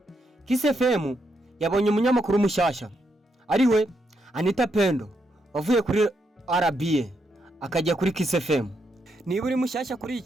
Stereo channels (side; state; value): both; normal; correlation 0.79